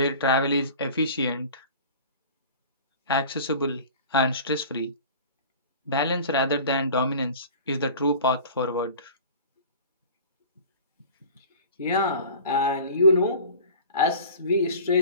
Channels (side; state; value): both; inverted; correlation -0.41